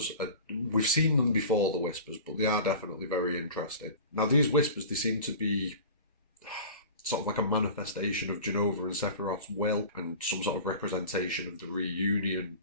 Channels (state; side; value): inverted; both; correlation -0.37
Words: we've seen them before, the whispers, but they are definitely very interesting. Now, these whispers, they seem to be sort of like a manifestation of Jenova and Sephiroth's will, and some sort of representation of the reunion,